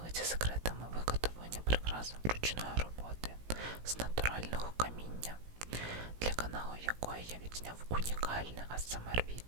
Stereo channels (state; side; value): late; left; 17 ms